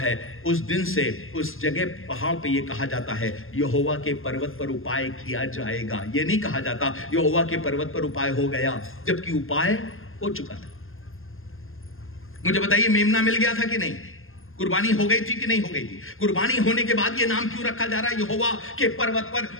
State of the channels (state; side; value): late; right; 0.60 ms